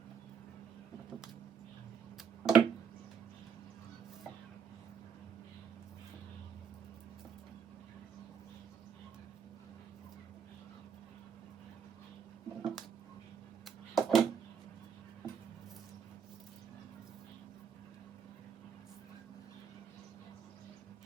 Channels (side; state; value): left; quieter; 7.0 dB